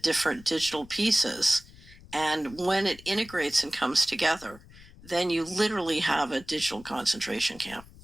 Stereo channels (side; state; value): left; noise; rumble, 21 dB below the sound